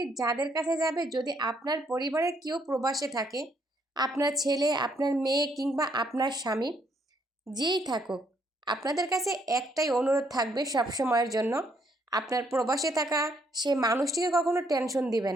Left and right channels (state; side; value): normal; both; correlation 0.71